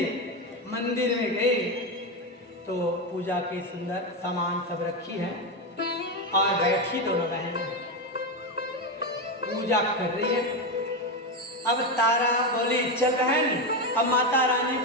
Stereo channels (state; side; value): normal; both; correlation 0.12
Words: मंदिर में गए तो पूजा के सुंदर सामान सब रखी है और बैठी दोनों बहनें पूजा कर रही है। अब तारा बोली चल बहन, अब माता रानी